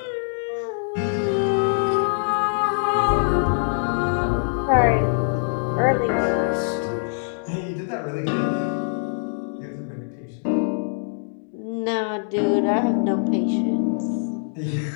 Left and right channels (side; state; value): right; silent; digital silence